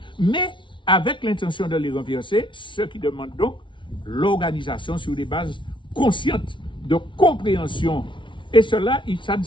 mais avec l'intention de les renverser, ce qui demande donc l'organisation sur des bases conscientes de compréhension. Et cela, ça ne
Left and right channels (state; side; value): late; right; 0.24 ms